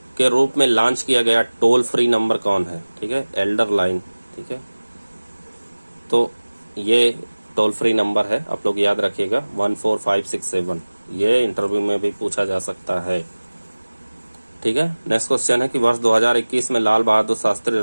के रूप में लॉन्च किया गया टोल फ्री नंबर कौन है? ठीक है, एल्डर लाइन। ठीक है, तो ये टोल फ्री नंबर है, आप लोग याद रखिएगा 14567। ये इंटरव्यू में भी पूछा जा सकता है। ठीक है। नेक्स्ट क्वेश्चन है कि वर्ष 2021 में लाल बहादुर शास्त्री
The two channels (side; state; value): both; inverted; correlation -1.00